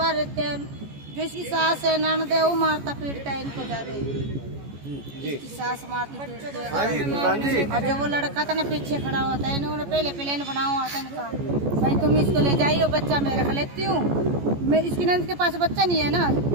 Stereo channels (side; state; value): left; late; 14 ms